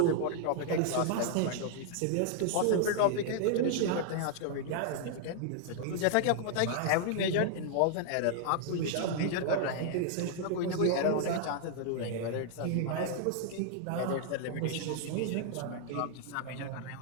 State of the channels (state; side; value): different; both; correlation -0.01